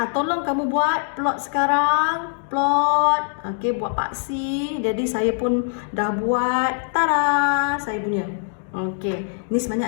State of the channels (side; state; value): right; silent; digital silence